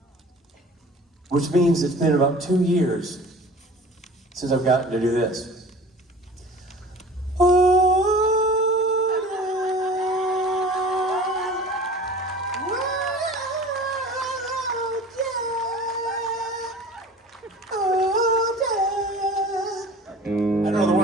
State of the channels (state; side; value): normal; both; correlation 0.43